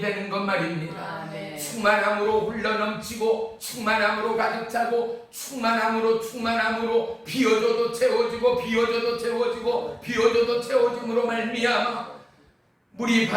것 말입니다. 충만함으로 흘러넘치고 충만함으로 가득 차고 충만함으로 비워져도 채워지고 비워져도 채워지고 비워져도 채워짐으로 말미암아 물이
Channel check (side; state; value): both; identical; correlation 1.00